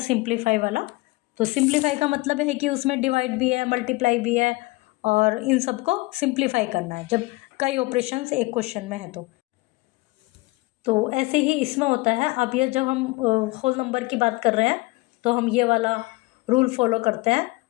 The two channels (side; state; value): right; quieter; 22.7 dB